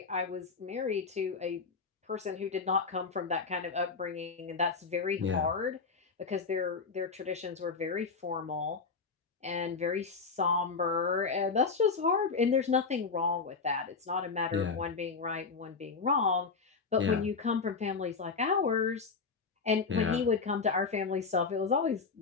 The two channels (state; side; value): quieter; right; 4.8 dB